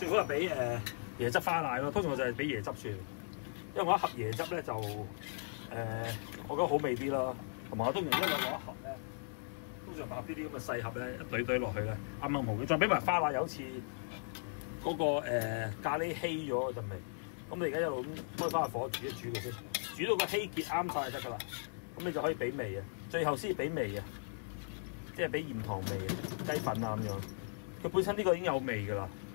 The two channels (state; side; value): silent; right; digital silence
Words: 好係俾椰汁花奶咯。通常我就係俾椰汁算，因為我一盒椰汁咧就我覺得好味啲啦。同埋我通常一路攞一盒咧，通常買呢啲咁嘅細盒咧，一堆堆落去咧，啱啱好嘅。再俾埋花奶，有次嗰個咖喱稀咗嗰陣味。咁你而家一路咁開翻個火煮一煮佢先，煮到個稀結啱晒就得㗎啦。咁你就可以俾味啊，最後先俾味啊，即係俾鹽糖味、雞粉啊咁樣。佢本身呢個已經有味㗎啦。